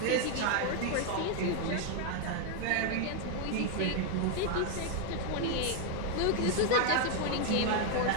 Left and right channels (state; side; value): different; both; correlation 0.00